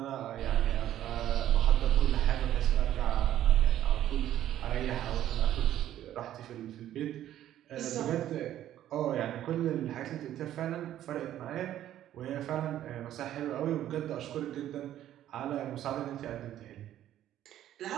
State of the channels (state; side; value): quieter; left; 12.2 dB